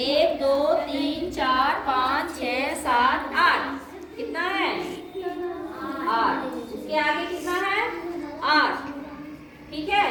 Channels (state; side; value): identical; both; correlation 1.00